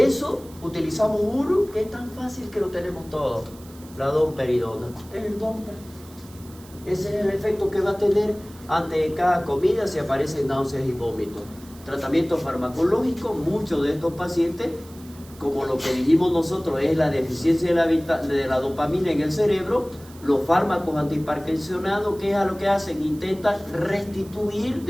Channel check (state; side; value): noise; right; hiss, 22 dB below the sound